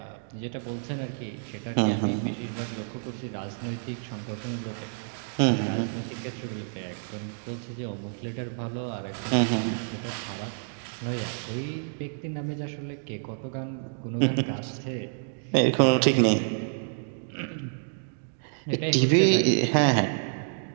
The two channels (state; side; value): silent; left; digital silence